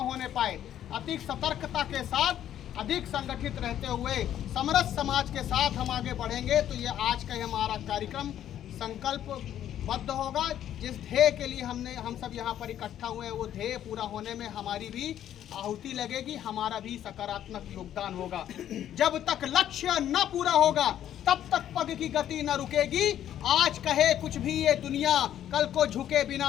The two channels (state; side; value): quieter; right; 11.0 dB